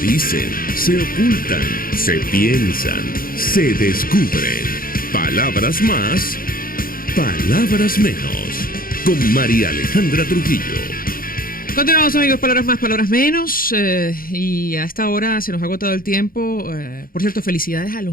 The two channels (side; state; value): right; late; 0.42 ms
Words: se ocultan, se piensan, se descubren. Palabras más, palabras menos. Con María Alejandra Trujillo. Continuamos, amigos, palabras más, palabras menos, y a esta hora se nos ha agotado el tiempo. Por cierto, felicidades a